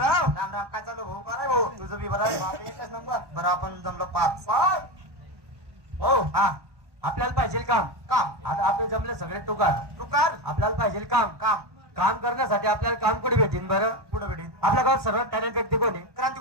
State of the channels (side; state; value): left; late; 1.1 ms